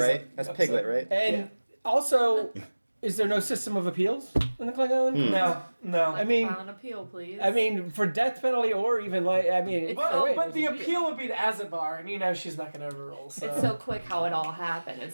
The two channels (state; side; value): inverted; both; correlation -1.00